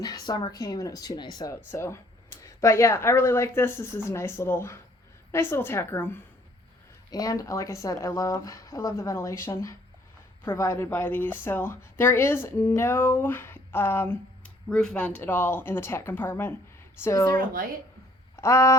summer came and it was too nice out. So, but yeah, I really like this. This is a nice little tack room. And like I said, I love the ventilation provided by these. So there is no roof vent at all in the tack compartment. So is there a light?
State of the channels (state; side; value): normal; both; correlation 0.61